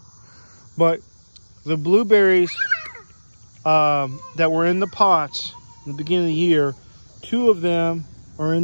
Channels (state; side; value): inverted; both; correlation -1.00